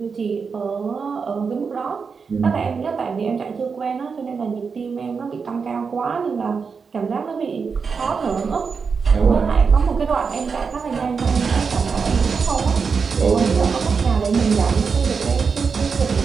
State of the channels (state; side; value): quieter; left; 5.5 dB